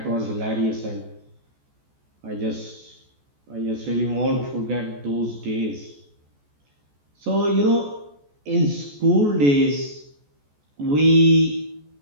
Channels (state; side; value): late; left; 14 ms